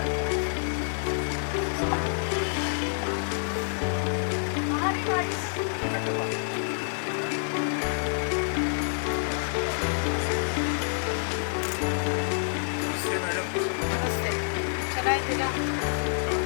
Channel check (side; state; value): right; silent; 60 dB below the other